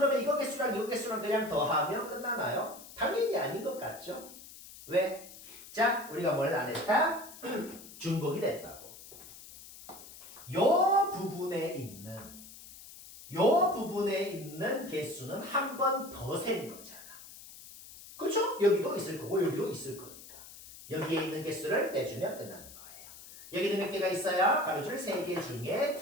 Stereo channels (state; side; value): noise; left; hiss, 17 dB below the sound